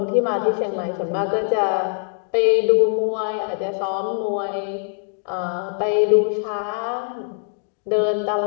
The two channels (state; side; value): silent; right; digital silence